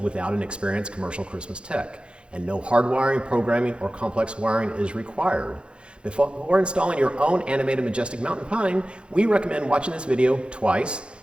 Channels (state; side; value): late; left; 0.056 ms